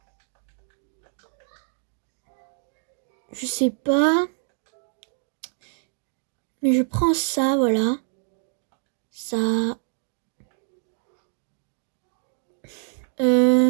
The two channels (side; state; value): left; silent; digital silence